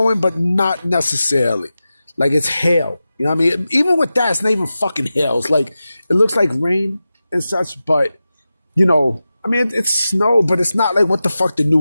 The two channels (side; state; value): both; inverted; correlation -0.93